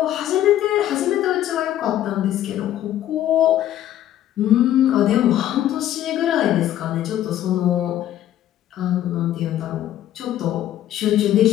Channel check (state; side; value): quieter; right; 12.3 dB